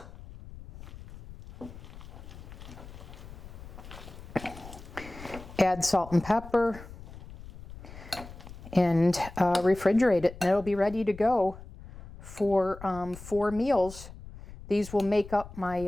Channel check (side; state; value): left; noise; rumble, 15 dB below the sound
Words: Add salt and pepper and refrigerate it, and it'll be ready to go for 4 meals. These will make up